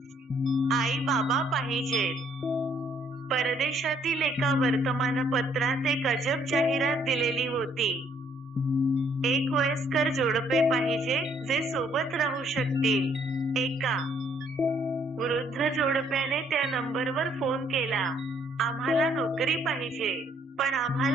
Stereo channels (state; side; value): normal; both; correlation 0.66